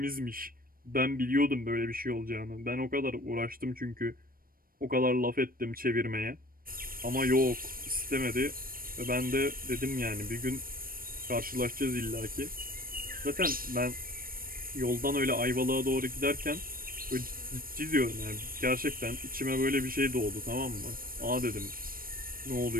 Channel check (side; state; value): left; late; 0.42 ms